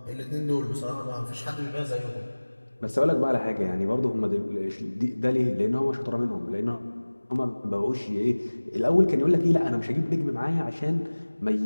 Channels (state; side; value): inverted; both; correlation -1.00